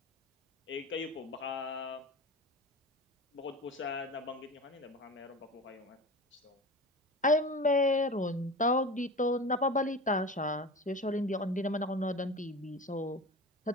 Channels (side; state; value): both; normal; correlation 0.32